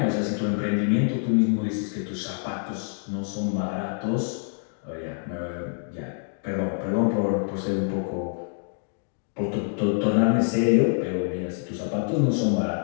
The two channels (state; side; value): silent; right; 59 dB below the other